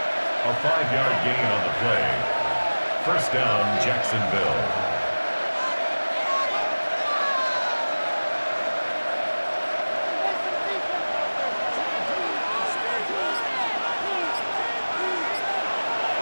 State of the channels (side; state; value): both; inverted; correlation -1.00